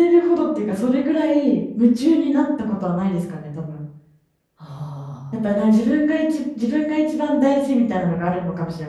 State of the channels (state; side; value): identical; both; correlation 1.00